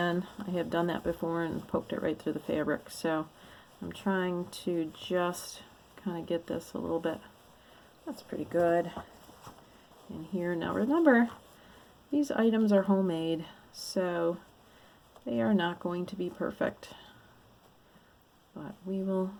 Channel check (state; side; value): identical; both; correlation 1.00